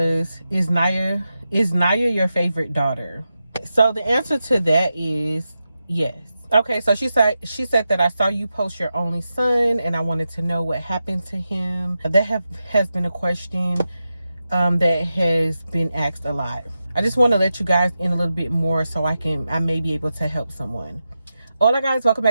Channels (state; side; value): inverted; both; correlation -0.90